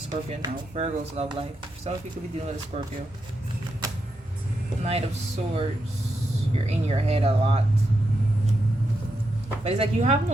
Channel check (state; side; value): normal; both; correlation 0.84